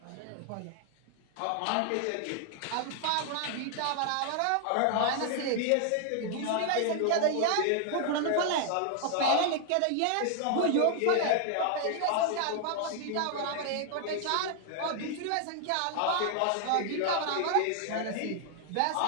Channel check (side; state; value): both; different; correlation 0.00